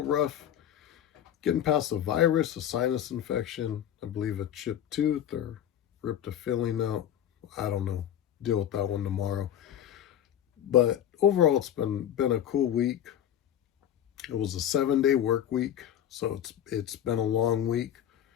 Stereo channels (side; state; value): right; quieter; 10.4 dB